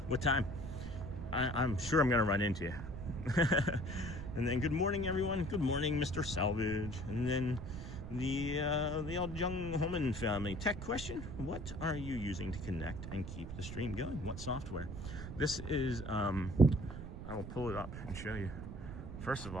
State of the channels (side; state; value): right; noise; rumble, 9 dB below the sound